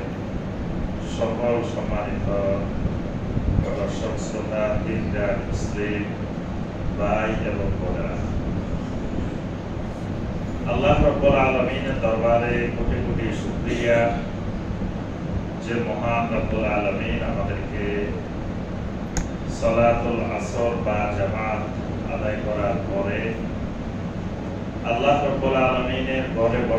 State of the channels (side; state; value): both; identical; correlation 1.00